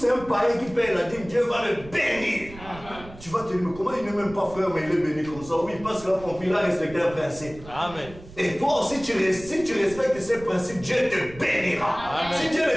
un païen qui paye la dîme, Dieu va le bénir. Tu vas te dire, mais comment il n'est même pas frère, mais il est béni comme ça? Oui, parce qu'il a compris, il a respecté un principe. Amen. Et toi aussi, si tu respectes ces principes, Dieu te bénira. Amen. Si Dieu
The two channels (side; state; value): right; noise; rumble, 17 dB below the sound